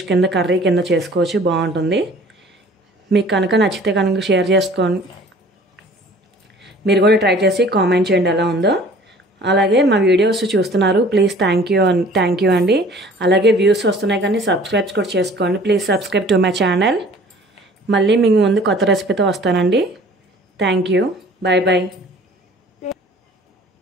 కింద కర్రీ కింద చేసుకోవచ్చు, బాగుంటుంది. మీకు కనుక నచ్చితే కనుక షేర్ చేసుకోండి. మీరు కూడా ట్రై చేసి కామెంట్ చేయండి ఎలా ఉందో. అలాగే మా వీడియోస్ చూస్తున్నారు, ప్లీజ్ థ్యాంక్ యూ అండి. అలాగే వ్యూస్ వస్తున్నాయి కానీ సబ్స్క్రైబ్ కూడా చేసుకోండి. Please subscribe to my channel. మళ్ళీ మీ ముందు కొత్త రెసిపీతో వస్తానండి. Thank you, bye bye.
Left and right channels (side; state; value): both; normal; correlation 0.50